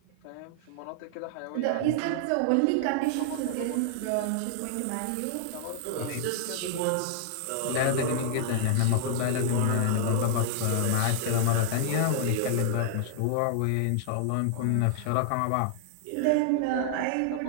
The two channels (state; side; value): different; both; correlation 0.00